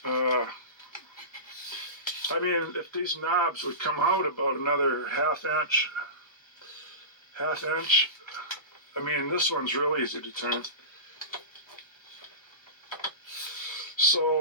I mean, if these knobs would come out about another half inch, I mean, this one's real easy to turn.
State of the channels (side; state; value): right; late; 1.0 ms